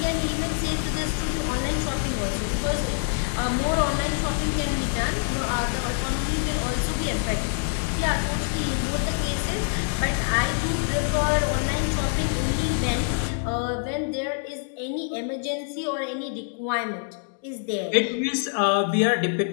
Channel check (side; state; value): right; silent; 61 dB below the other